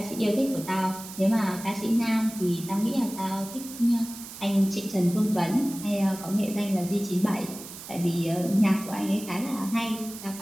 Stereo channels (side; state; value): right; noise; hiss, 13 dB below the sound